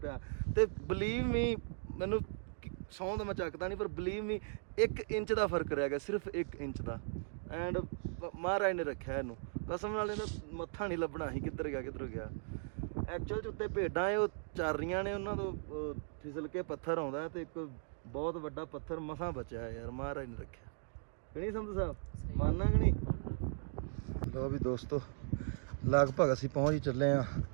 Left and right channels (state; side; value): silent; left; digital silence